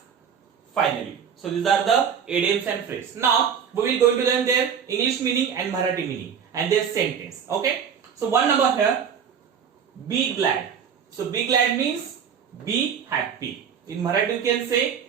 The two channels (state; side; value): quieter; left; 7.4 dB